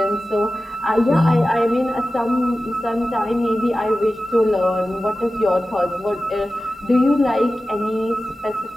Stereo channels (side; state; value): both; normal; correlation 0.94